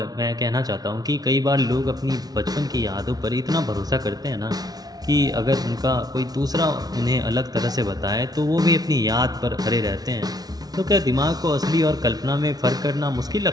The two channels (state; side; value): late; left; 0.19 ms